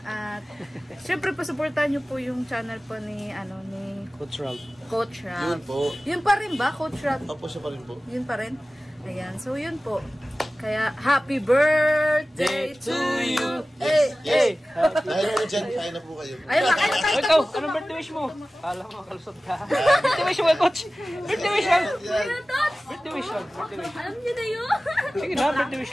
At, syempre, pasuportahan nyo po yung channel po ni, ni Coach Ram. Coach Yun Rab. po. Yun pa rin ba, Coach Rab? Opo, siya pa rin po. Yun pa rin. Ayan. So, yun po. Kaya, happy birthday to you! Hey! Dahil po dyan, kain na po kayo. Ayun, kain na tayo. Ikaw, anong birthday wish mo? Kala mo, kalusot ka. Birthday wish mo kay Coach. Birthday wish lang. Birthday wish lang. Birthday wish. Alam niyo na yun? Sige na, birthday wish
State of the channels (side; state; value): both; normal; correlation 0.97